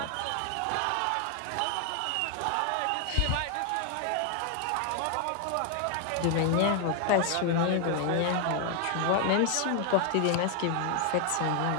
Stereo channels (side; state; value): both; different; correlation 0.00